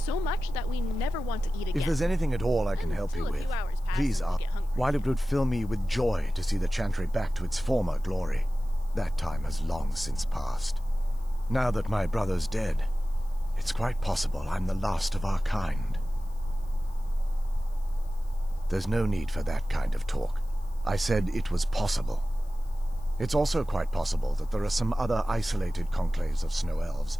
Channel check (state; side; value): noise; left; hiss, 28 dB below the sound